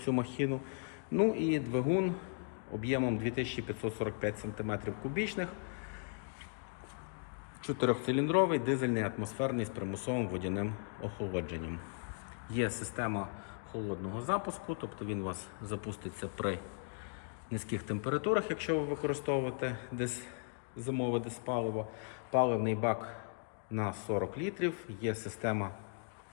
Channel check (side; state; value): right; silent; 53 dB below the other